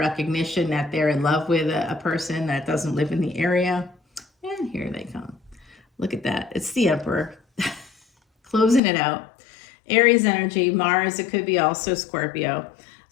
that they're in love with a person that doesn't live in the area. And here they come. Look at that. It's the Emperor. Closing it out. Aries energy, Mars, it could be also Scorpio.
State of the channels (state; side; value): drops out; right; at 8.8 s